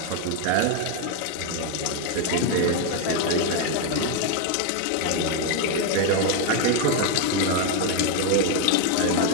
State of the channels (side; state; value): both; different; correlation 0.01